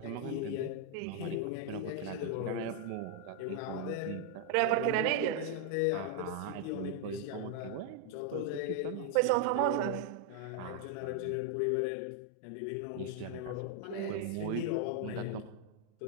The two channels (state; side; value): different; both; correlation 0.00